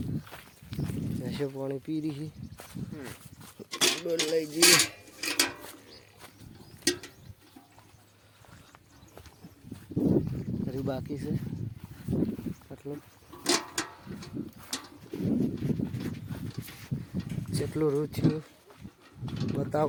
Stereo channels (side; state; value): both; identical; correlation 1.00